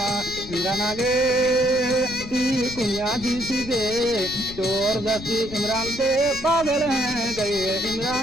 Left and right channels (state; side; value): noise; left; rumble, 14 dB below the sound